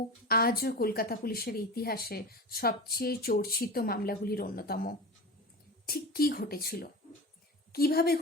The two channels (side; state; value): both; normal; correlation 0.29